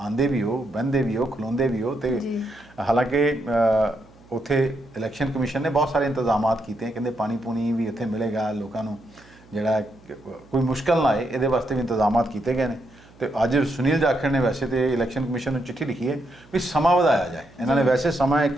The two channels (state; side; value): noise; right; hum, 26 dB below the sound